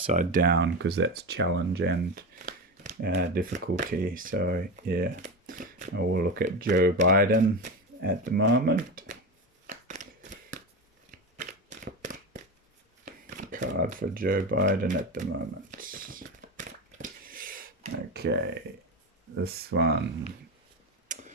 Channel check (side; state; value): both; normal; correlation 0.21